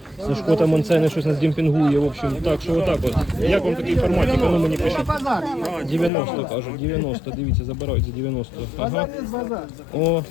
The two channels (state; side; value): drops out; right; at 6.1 s